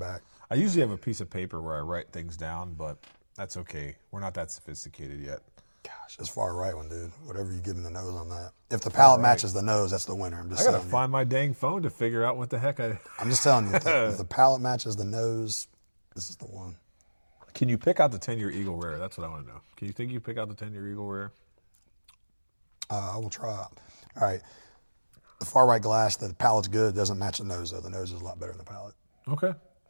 I usually have a piece of paper where I write things down, but that's okay. We're not that sophisticated yet. Gosh, it's far right one, dude. Whatever you give him the nose on that. If the palate matches the nose, that's the winner. I gotta find my dang phone to figure out what the heck I'm just telling you, if the palate matches the nose, this is the one. Can you pick out the 10-year Eagle Rare? That's what I want to know. Can you think you pick out the 10-year Eagle Rare? I will try. All right. The far right glass, the palate's good. Doesn't match the nose, though. The nose is a lot better than the palate. Okay.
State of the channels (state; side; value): inverted; both; correlation -1.00